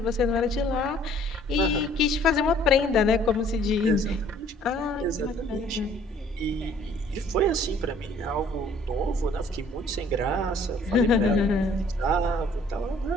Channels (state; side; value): normal; both; correlation 0.57